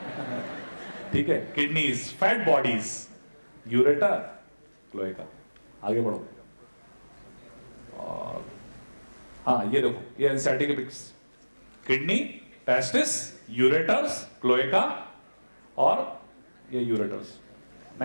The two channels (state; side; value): inverted; both; correlation -1.00